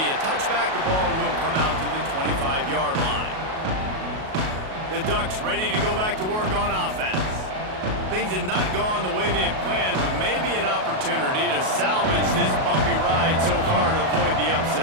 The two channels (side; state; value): left; late; 37 ms